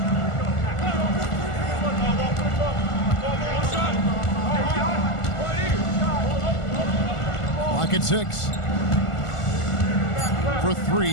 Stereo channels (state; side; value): late; right; 1.5 ms